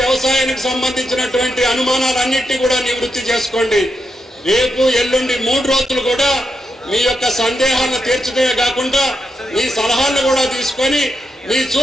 వ్యవసాయానికి సంబంధించినటువంటి అనుమానాలన్నింటినీ కూడా నివృత్తి చేసుకోండి. రేపు ఎల్లుండి 3 రోజులు కూడా మీ యొక్క సందేహాలను తీర్చడమే కాకుండా మీ సలహాలను కూడా తీసుకొని మీ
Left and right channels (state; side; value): normal; both; correlation 0.84